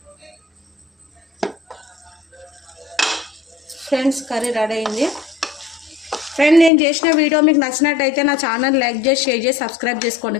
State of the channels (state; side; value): drops out; right; at 6.7 s